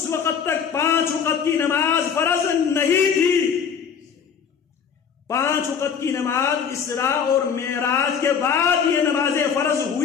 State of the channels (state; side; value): quieter; right; 7.0 dB